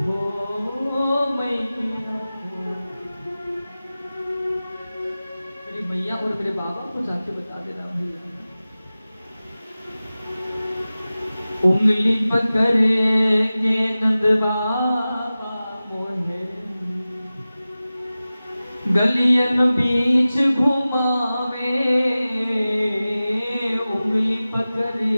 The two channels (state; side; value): inverted; both; correlation -0.96